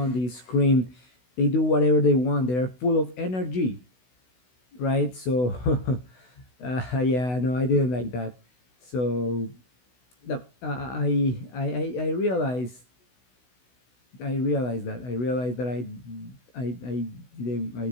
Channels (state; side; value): late; right; 16 ms